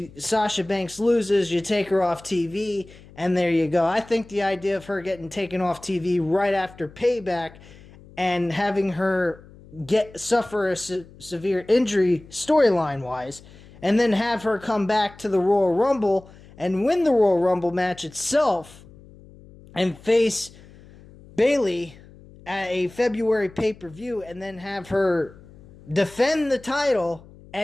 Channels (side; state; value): left; noise; hum, 22 dB below the sound